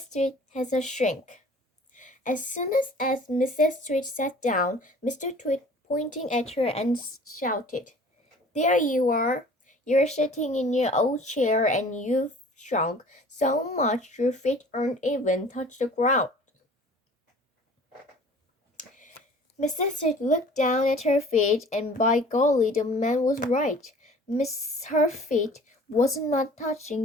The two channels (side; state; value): both; normal; correlation 0.48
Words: Tweed has a shrink. As soon as Mrs. Tweed sat down, Mr. Tweed pointing at her and shouted, "There you are! You're sitting in your old chair and you've shrunk so much your feet aren't even touch the ground." Mrs. Tweed looked down at her feet, and by golly, the man was right. Her feet was not